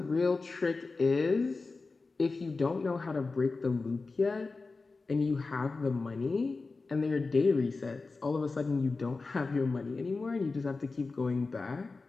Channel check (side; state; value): right; quieter; 3.9 dB